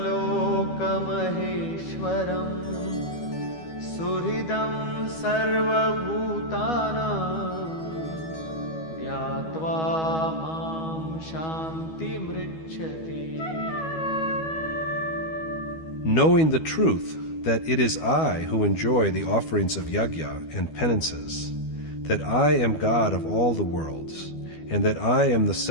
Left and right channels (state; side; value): late; right; 12 ms